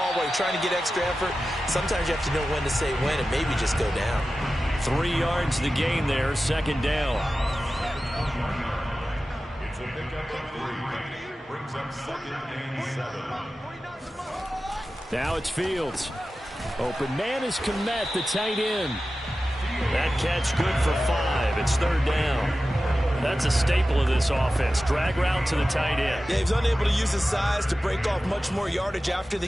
while you're trying to get extra effort. Sometimes you have to know when to say when and maybe just go down. 3 yards the gain there, 2nd down. It's a pickup of 3. Brings up 2nd and 7. Now it's Fields. Open man is Kmet, the tight end. That catch good for 5. It's 3rd down. That's a staple of this offense. Drag route to the tight end. Yeah, he was unable to use his size to break off much more yardage after the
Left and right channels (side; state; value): both; normal; correlation 0.94